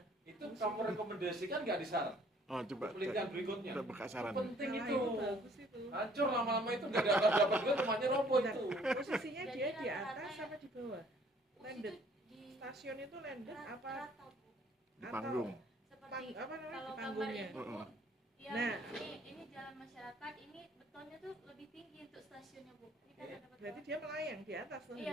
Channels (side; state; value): both; normal; correlation 0.59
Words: Itu kamu rekomendasikan nggak di saran? Oh coba. Penelitian berikutnya. Kita buka saran. Penting Nah, itu. bagus itu. Hancur lama-lama itu nggak dapat juga rumahnya roboh Bentar, itu. posisinya Jadi dia di rata-rata atas ya- apa di bawah? Bus Landed. itu di Stasiun itu landed apa? rata Bu. Di panggung. Seperti Apa namanya kalau di gambar panggungnya? itu Heeh. ya, Nah. ini jalan masyarakat, ini betonnya tuh lebih tinggi untuk stasiunnya Bu. Ini kan Iya. ada beton. Berarti dia melayang di atas tuh